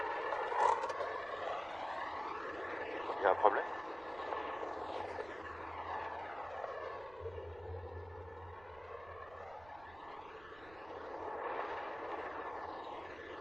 Il y a un problème?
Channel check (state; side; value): noise; right; rumble, 21 dB below the sound